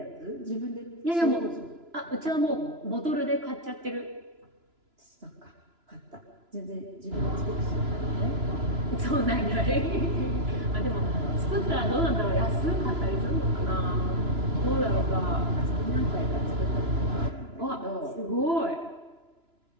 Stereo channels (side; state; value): left; late; 2.9 ms